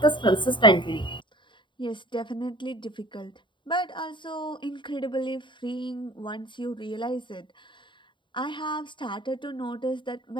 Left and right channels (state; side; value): late; right; 0.23 ms